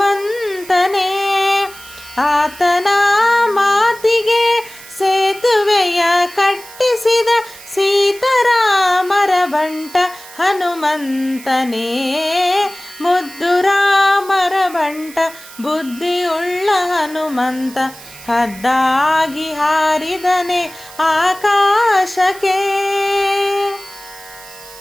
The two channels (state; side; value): noise; right; hiss, 18 dB below the sound